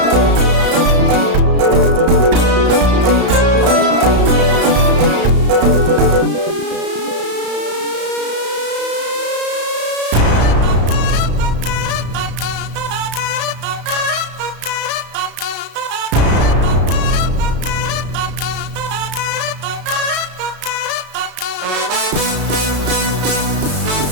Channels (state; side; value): late; left; 34 ms